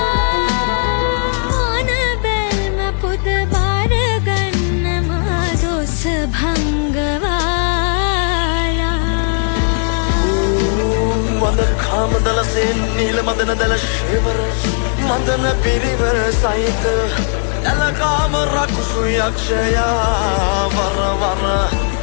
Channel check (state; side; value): silent; right; digital silence